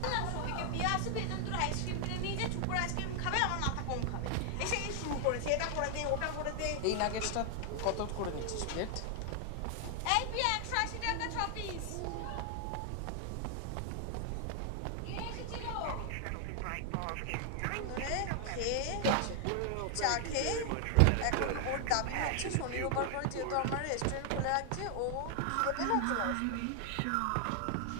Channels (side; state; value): both; different; correlation 0.00